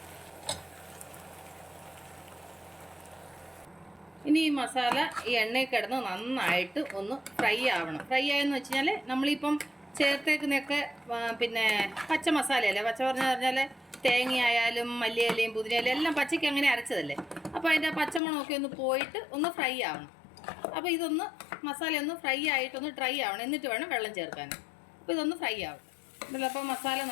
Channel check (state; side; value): drops out; right; at 18.2 s